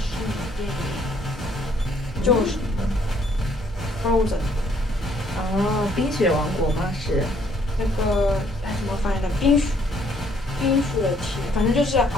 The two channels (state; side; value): normal; both; correlation 0.65